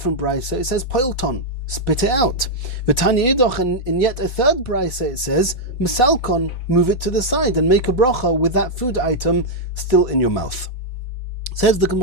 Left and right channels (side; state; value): right; late; 4.1 ms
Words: brisa it says poilton, spit it out. With Tanya Idoch, in yet a third brisa it says mesalkon, move it to the side and make a bracha with that food item still in your mouth. Says the